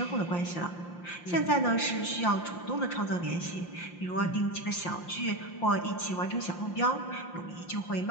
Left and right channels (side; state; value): right; late; 5.7 ms